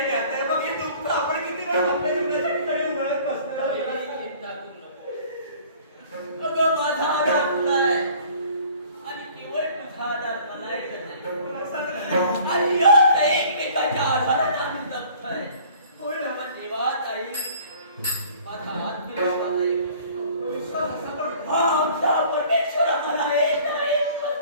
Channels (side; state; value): both; inverted; correlation -0.51